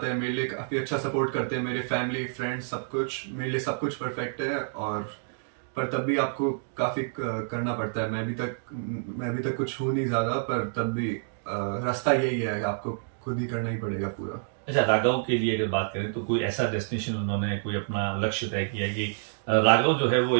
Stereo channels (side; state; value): left; silent; digital silence